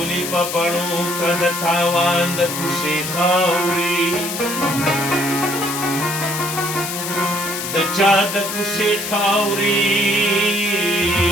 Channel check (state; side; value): noise; left; hiss, 5 dB below the sound